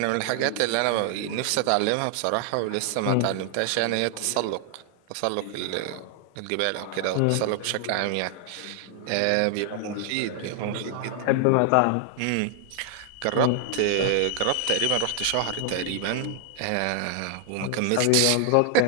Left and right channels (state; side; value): different; both; correlation 0.00